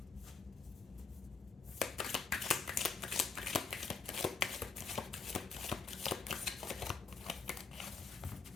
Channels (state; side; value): quieter; right; 4.9 dB